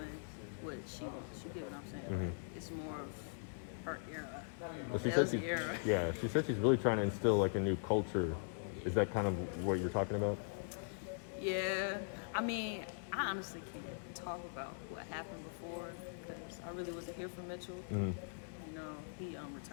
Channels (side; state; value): right; silent; digital silence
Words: what she wants. You get what I'm saying? Like it's more of her era. Well, she said LZ she's, era. yeah, she said she's really trying to instill like a new culture. Is that kind of what you're talking about? Yeah, I mean, I honestly can't talk about what happened before because I really wasn't here for Mitchell. You know, he